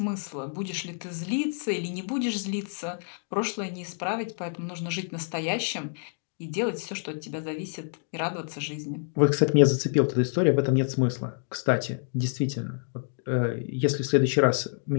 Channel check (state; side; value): silent; right; digital silence